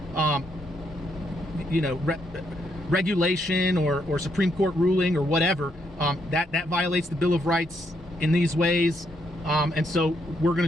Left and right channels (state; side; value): normal; both; correlation 0.76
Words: you know, regulation or Supreme Court ruling or whatever. That violates the Bill of Rights in these ways. And so we're going